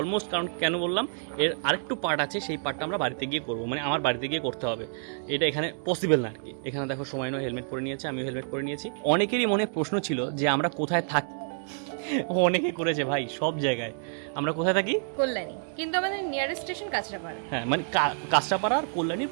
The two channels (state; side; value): silent; left; digital silence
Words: কারণ কেন বললাম, এর আরেকটু পার্ট আছে, সেই পার্টটা আমরা বাড়িতে গিয়ে করবো, মানে আমার বাড়িতে গিয়ে করতে হবে। এটা এখানে পসিবল না আর কি। এখানে দেখো সময় নয়, হেলমেট পরে নিয়েছে, আমিও হেলমেট পরে নিয়েছি। অনেকেরই মনে প্রশ্ন ছিল যে আমরা কোথায় থাকি। অনেকে করেছে ভাই, সব জায়গায় আমরা কোথায় থাকি? কল্যাণী, কিন্তু আমাদের নিয়ারেস্ট স্টেশন কাঁচরাপাড়া। হ্যাঁ, মানে কাঁচরাপাড়া আর কল্যাণীর